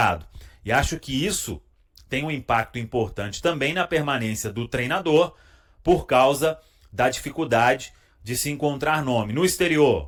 E acho que isso tem um impacto importante também na permanência do treinador, por causa da dificuldade de se encontrar nome. No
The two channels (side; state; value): both; identical; correlation 1.00